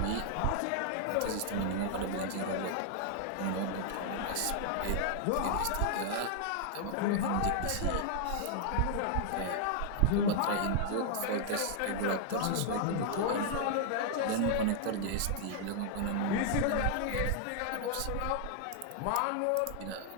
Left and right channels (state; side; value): different; both; correlation -0.01